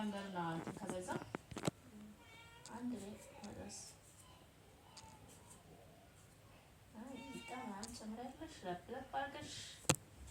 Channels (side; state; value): both; identical; correlation 1.00